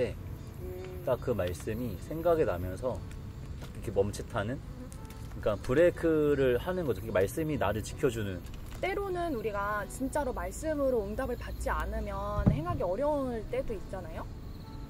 딱 그 말씀이 생각이 나면서 이렇게 멈칫하는, 그러니까 브레이크를 하는 거죠. 말씀이 나를 지켜주는. 때로는 우리가 진짜로 말씀으로 응답을 받지 않으면 행하기 어려울 때도 있잖아요.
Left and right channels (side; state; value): both; identical; correlation 1.00